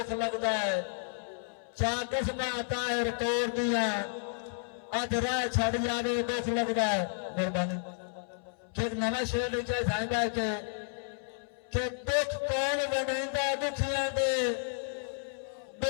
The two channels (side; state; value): right; silent; 57 dB below the other